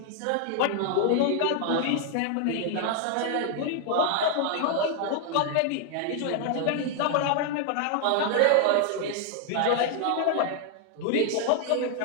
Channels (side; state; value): both; different; correlation 0.00